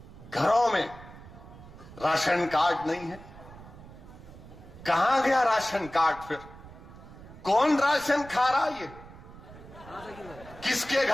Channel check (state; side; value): noise; right; rumble, 18 dB below the sound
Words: घरों में राशन कार्ड नहीं है। कहां गया राशन कार्ड? फिर कौन राशन खा रहा है? ये किसके